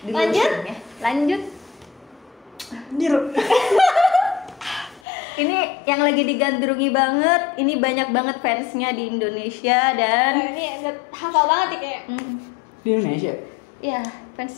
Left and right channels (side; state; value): right; drops out; at 5.0 s